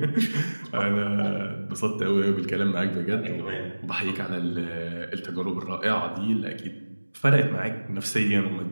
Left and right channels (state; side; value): inverted; both; correlation -1.00